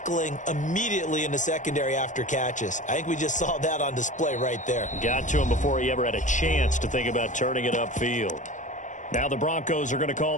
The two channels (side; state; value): right; late; 0.36 ms